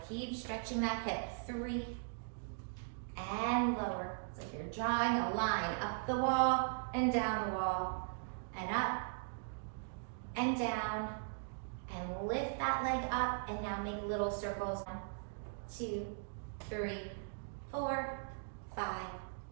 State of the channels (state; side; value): silent; left; digital silence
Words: Keep stretching that hip. 3 and lower. It's like you're drawing a line up the wall and down the wall and up and down. And lift that leg up and now make little circles. 1, 2, 3, 4, 5,